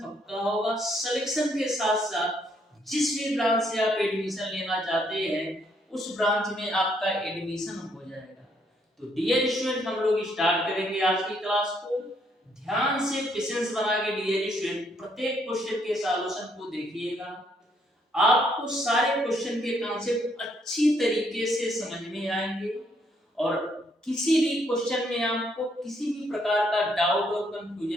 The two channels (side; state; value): both; normal; correlation 0.71